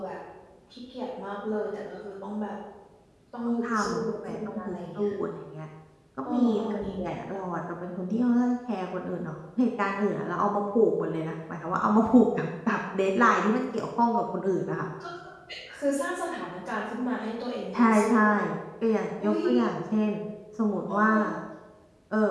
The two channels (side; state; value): both; identical; correlation 1.00